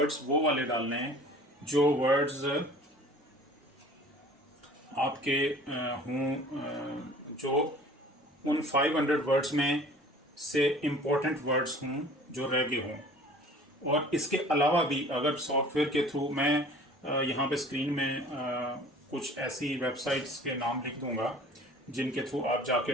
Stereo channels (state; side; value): normal; both; correlation 0.47